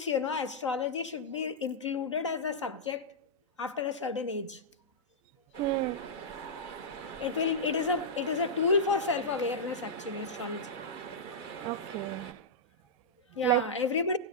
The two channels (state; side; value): normal; both; correlation -0.10